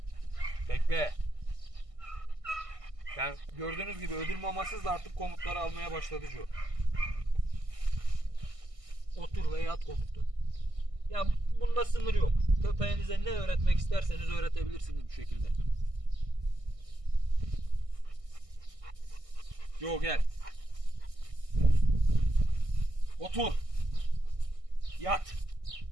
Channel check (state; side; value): late; left; 1.6 ms